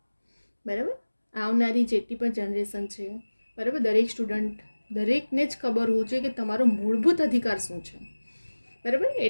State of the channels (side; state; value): both; inverted; correlation -1.00